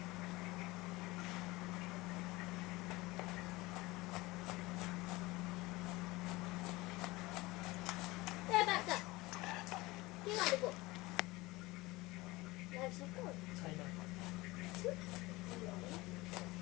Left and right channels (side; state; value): right; quieter; 21.2 dB